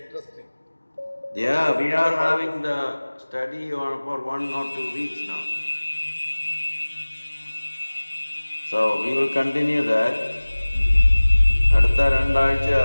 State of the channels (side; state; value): both; inverted; correlation -1.00